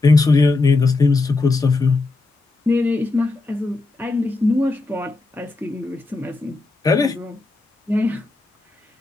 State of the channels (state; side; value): quieter; right; 3.4 dB